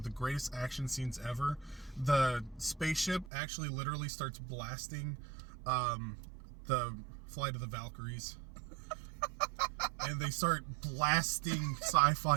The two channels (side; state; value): left; drops out; at 3.3 s